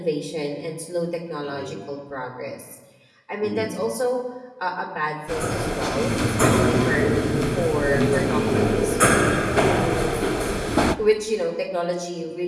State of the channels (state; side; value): identical; both; correlation 1.00